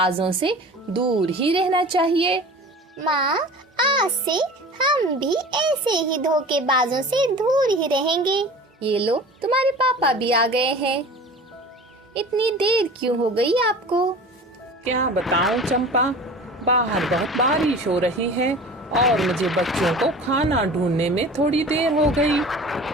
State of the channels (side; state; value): both; normal; correlation 0.39